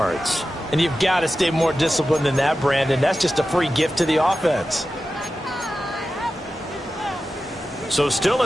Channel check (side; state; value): both; normal; correlation 0.93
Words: And you've got to stay more disciplined than that, Brandon. That's just a free gift to the offense. So still a